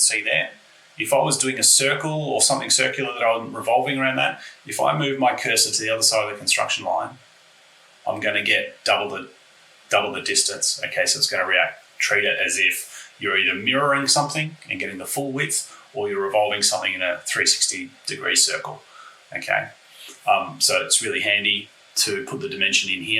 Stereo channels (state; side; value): identical; both; correlation 1.00